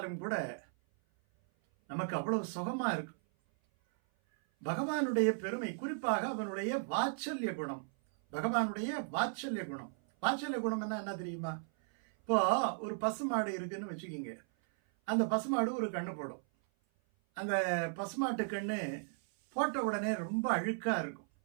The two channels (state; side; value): silent; left; 54 dB below the other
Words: கூட நமக்கு அவ்வளவு சுகமா இருக்கும். பகவானுடைய பெருமை, குறிப்பாக அவனுடைய வாத்சல்ய குணம். பகவானுடைய வாத்சல்ய குணம். வாத்சல்ய குணம் என்ன தெரியுமா? இப்போ ஒரு பசுமாடு இருக்குன்னு வச்சுக்கிங்க. அந்த பசுமாடு ஒரு கண்ணு போடும். அந்த பசுமாட்டு கண்ணு போட்ட உடனே ரொம்ப அழுக்கா இருக்கும்.